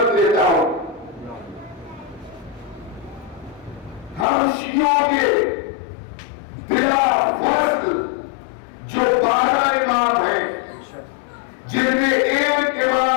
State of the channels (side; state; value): right; drops out; at 4.2 s